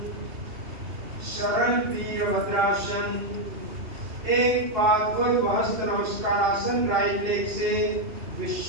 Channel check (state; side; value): late; left; 2.8 ms